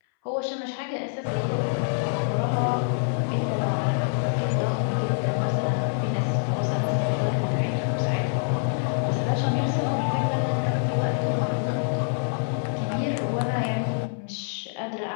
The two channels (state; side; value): silent; right; 61 dB below the other